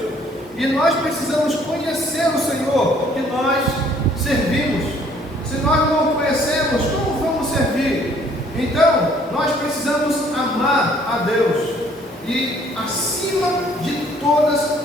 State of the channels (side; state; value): both; normal; correlation 0.60